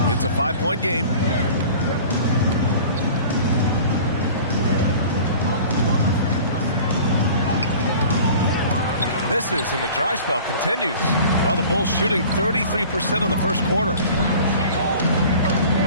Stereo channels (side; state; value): both; inverted; correlation -0.43